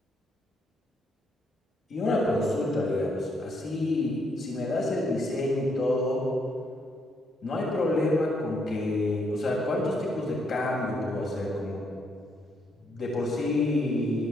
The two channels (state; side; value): normal; both; correlation 0.74